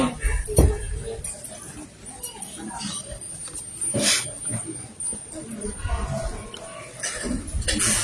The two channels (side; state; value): both; identical; correlation 1.00